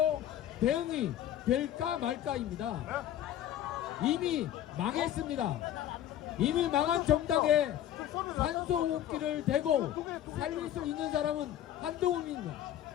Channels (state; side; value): quieter; right; 11.5 dB